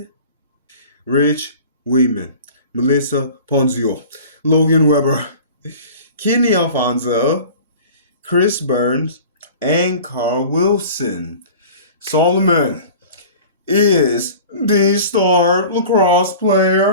Rich Weeman, Melissa Ponzio, Logan Weber, Kenny Alfonso, Chris Burns, and Carl Wilson. Solomon is the star lacrosse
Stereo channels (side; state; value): both; inverted; correlation -0.41